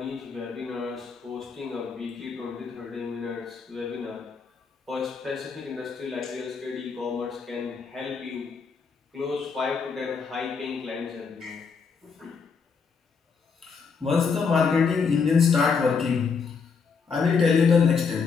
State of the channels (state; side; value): quieter; right; 5.5 dB